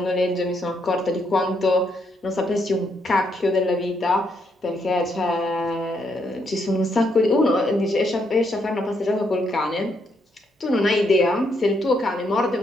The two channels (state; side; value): normal; both; correlation 0.76